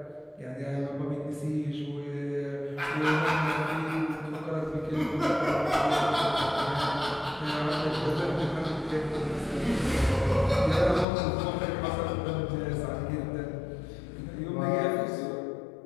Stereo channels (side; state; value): right; drops out; at 11.1 s